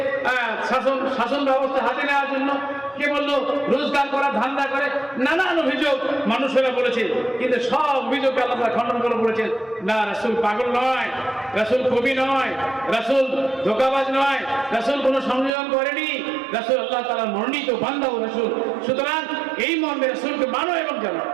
শাসন ব্যবস্থা হাতে নেওয়ার জন্য, কে বললো রোজগার করা ধান্দা করে, নানান অভিযোগ মানুষেরা বলেছে। কিন্তু সব অভিযোগকে আল্লাহ খণ্ডন করে বলেছেন না, রাসূল পাগল নয়, রাসূল কবি নয়, রাসূল ধোঁকাবাজ নয়, রাসূল কোনো সংযোজন করেনি, রাসূল আল্লাহ তাআলার মনোনীত বান্দা ও রাসূল। সুতরাং এই মর্মে রাসূলকে মানো এবং জানো।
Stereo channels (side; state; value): left; drops out; at 15.5 s